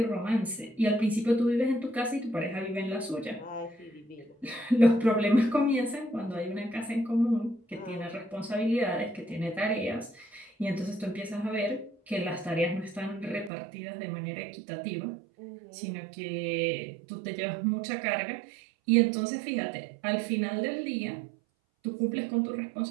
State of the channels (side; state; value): left; drops out; at 13.5 s